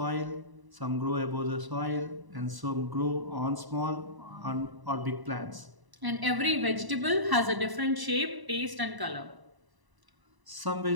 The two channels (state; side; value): late; left; 1.0 ms